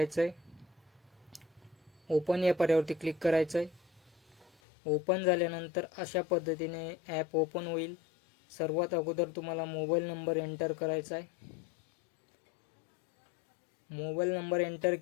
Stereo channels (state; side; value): drops out; right; at 4.5 s